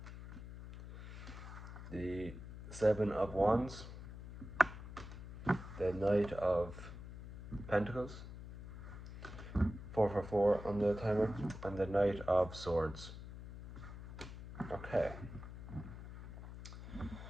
The Seven of Wands. The Knight of Pentacles. 4 for 4 on the timer. And the Knight of Swords. Okay.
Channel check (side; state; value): left; noise; hum, 11 dB below the sound